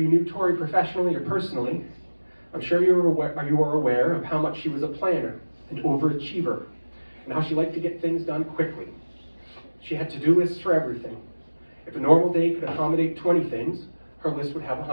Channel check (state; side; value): inverted; both; correlation -1.00